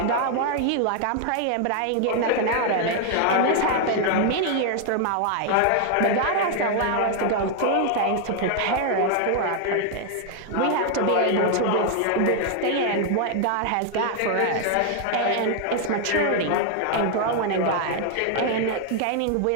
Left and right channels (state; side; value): different; both; correlation 0.00